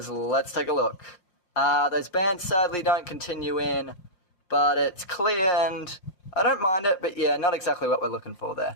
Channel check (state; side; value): late; right; 5.7 ms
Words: Let's take a look. Those bands sadly don't continue in, but it's clear and I don't mind it, but yeah, not exactly what we're looking for there.